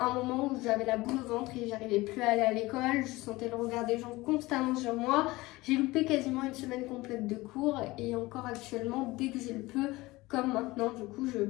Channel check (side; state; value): right; quieter; 20.5 dB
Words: un moment où j'avais la boule au ventre et j'arrivais plus à aller à l'école, je sentais le regard des gens constamment sur moi, j'ai loupé quasiment une semaine complète de cours et encore actuellement, dès que j'ai le peu, comme maintenant, du coup, je